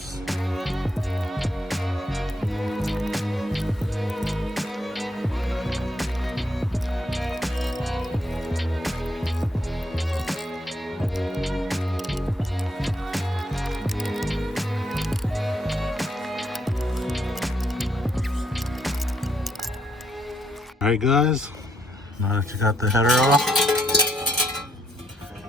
Alright guys, now that you got the header off,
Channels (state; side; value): normal; both; correlation 0.74